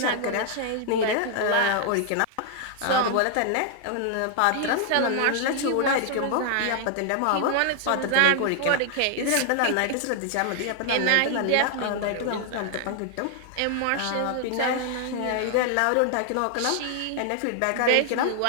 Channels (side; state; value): both; different; correlation 0.00